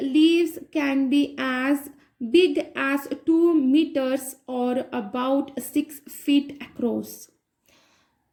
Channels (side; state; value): both; identical; correlation 1.00